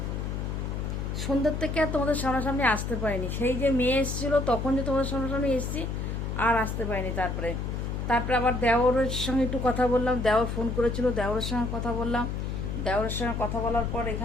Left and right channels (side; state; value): left; noise; hum, 3 dB below the sound